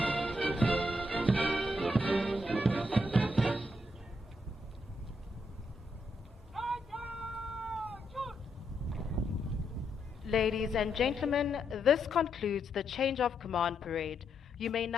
Ladies and gentlemen, this concludes the change of command parade. You may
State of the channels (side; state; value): both; normal; correlation 0.79